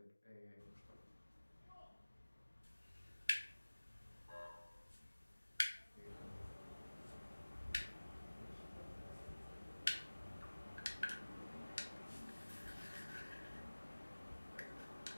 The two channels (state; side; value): inverted; both; correlation -1.00